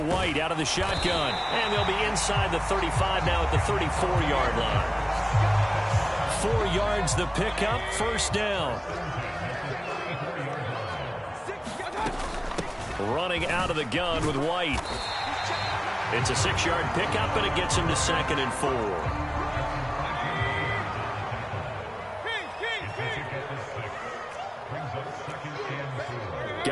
out of the shotgun, and they'll be inside the 35 now at the 34-yard line. 4 yards the pickup, first down. Running out of the gun with White. It's a 6-yard pickup, and it gets him to 2nd and 4.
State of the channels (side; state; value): both; identical; correlation 1.00